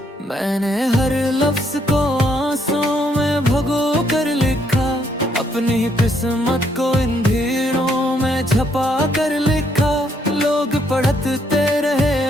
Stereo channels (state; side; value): normal; both; correlation 0.72